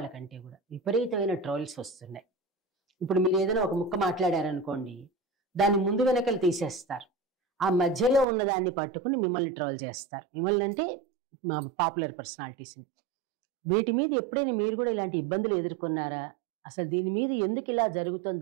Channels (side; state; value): left; drops out; at 8.2 s